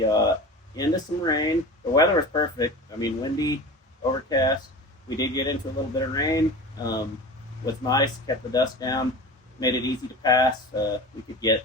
into some rain. The weather was perfect. I mean, windy, overcast. We did get into a little bit of rain. Was nice, kept the dust down, made it easy to pass. We could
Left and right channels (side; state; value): both; normal; correlation 0.33